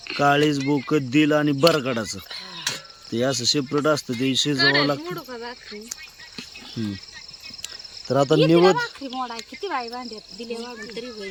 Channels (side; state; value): both; identical; correlation 1.00